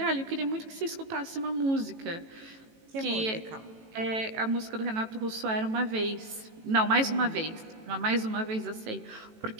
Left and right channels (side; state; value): left; late; 18 ms